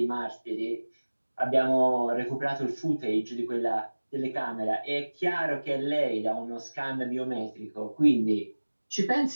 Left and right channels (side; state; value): both; inverted; correlation -1.00